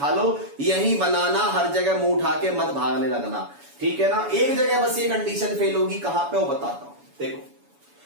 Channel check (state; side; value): late; left; 7.1 ms